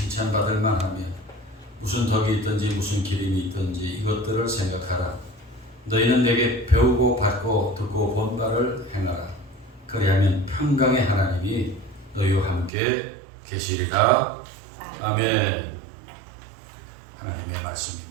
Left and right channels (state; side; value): drops out; left; at 12.7 s